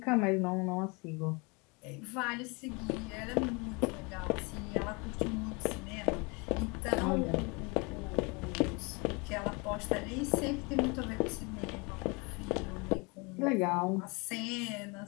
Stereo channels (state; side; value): quieter; right; 29.4 dB